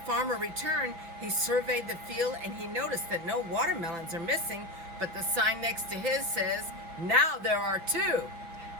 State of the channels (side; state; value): left; late; 5.6 ms